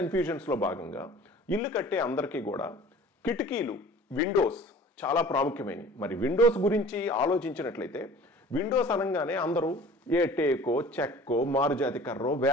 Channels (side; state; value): both; normal; correlation 0.45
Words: భాగంగా ఇల్లు కట్టే అందరికీ కూడా కిటికీలు, విండోస్ చాలా ప్రాముఖ్యమైనవి. మరి విండోస్ గురించి ఆలోచించినట్లయితే విండోస్ అనగానే అందరూ ఏ టేకో, చెక్కో, మారుజాతి కర్రో,